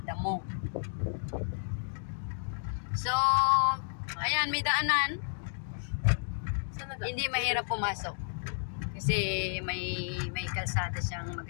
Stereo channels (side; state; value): right; silent; digital silence